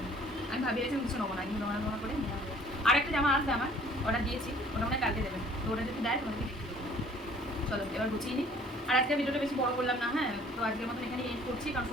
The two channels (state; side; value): normal; both; correlation 0.54